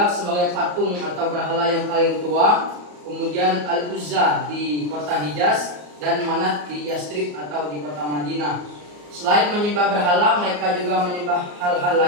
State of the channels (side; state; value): left; late; 34 ms